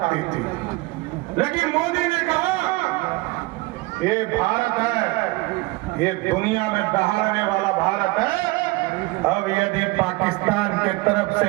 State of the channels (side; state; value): left; quieter; 22.6 dB